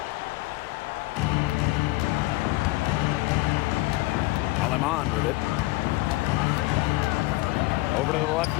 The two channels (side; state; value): right; quieter; 20.2 dB